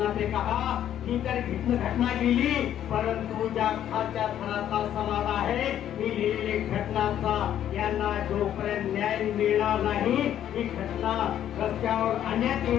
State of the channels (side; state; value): right; quieter; 10.8 dB